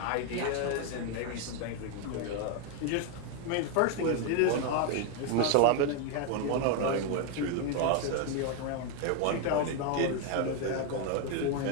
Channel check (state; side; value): different; both; correlation 0.01